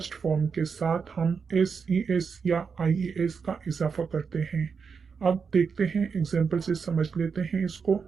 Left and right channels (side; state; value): left; quieter; 5.8 dB